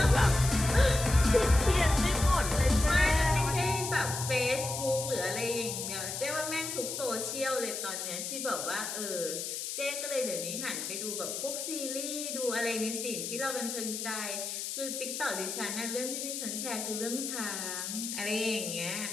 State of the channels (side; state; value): left; noise; hiss, 5 dB below the sound